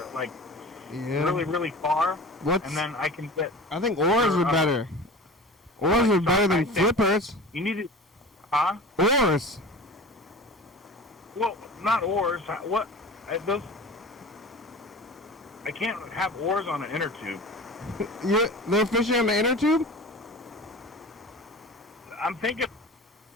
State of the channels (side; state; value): both; normal; correlation 0.36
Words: like really, really far. And then I can get. I think oars are better. Oars are better than flippers. You need to, huh? Oars. Well, not oars. What? Those. I can't have oars on an inner tube. They're fishing on the inner tube? I'm thinking.